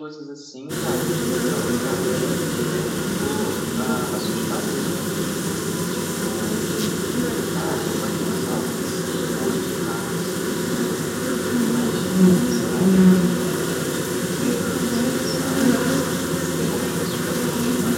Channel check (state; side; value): identical; both; correlation 1.00